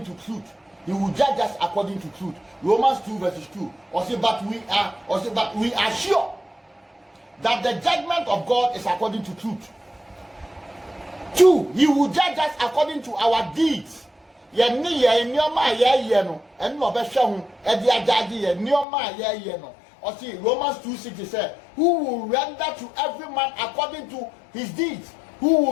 to truth. He will judge us according to truth. Romans 2 verses 2. But we are sure that the judgment of God is according to truth. 2, he will judge us according to our deeds. Yenni ye nyoma ye no en no be hwe ho e de agage ye nyoma ye no. Or see Romans 2:6 said, who will render to every man according to his deeds? Who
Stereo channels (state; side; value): drops out; right; at 18.9 s